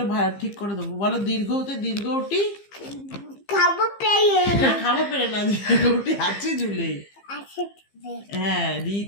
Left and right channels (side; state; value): right; late; 15 ms